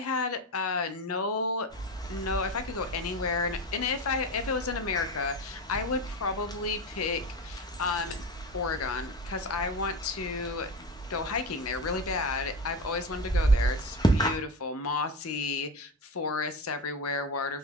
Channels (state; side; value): normal; both; correlation 0.23